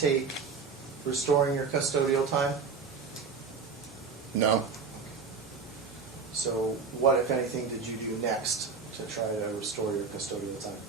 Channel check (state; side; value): quieter; left; 5.2 dB